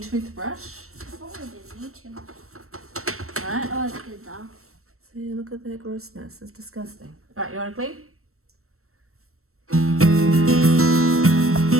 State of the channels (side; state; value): left; late; 0.63 ms